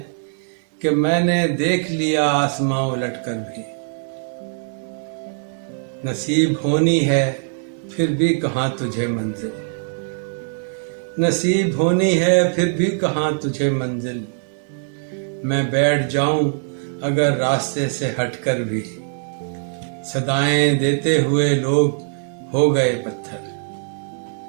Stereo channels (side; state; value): left; silent; digital silence